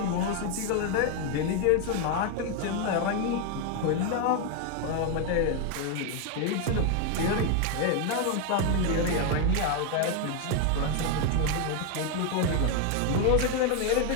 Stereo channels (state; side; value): different; both; correlation 0.01